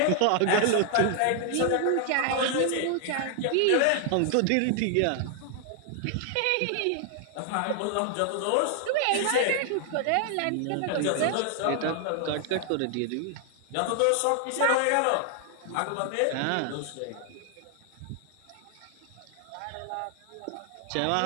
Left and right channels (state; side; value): different; both; correlation 0.00